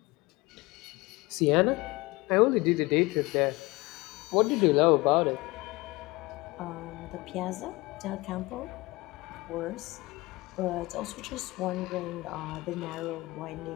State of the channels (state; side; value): quieter; right; 22.3 dB